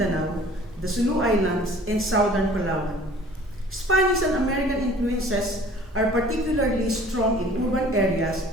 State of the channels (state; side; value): normal; both; correlation 0.50